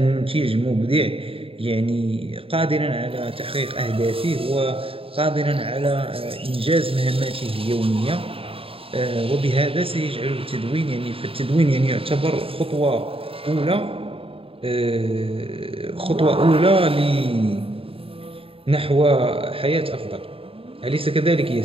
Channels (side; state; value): left; late; 0.27 ms